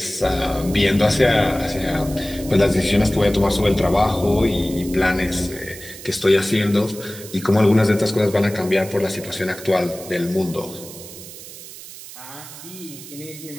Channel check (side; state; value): right; noise; hiss, 15 dB below the sound